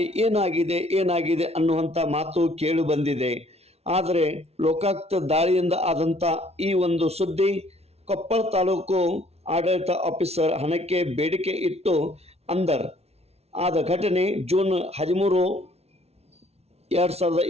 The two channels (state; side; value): late; left; 0.30 ms